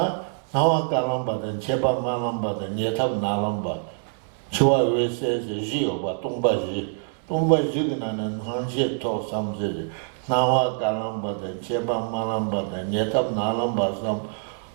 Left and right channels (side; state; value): left; silent; 60 dB below the other